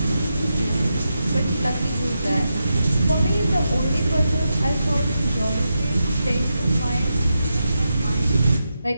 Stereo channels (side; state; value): both; inverted; correlation -0.87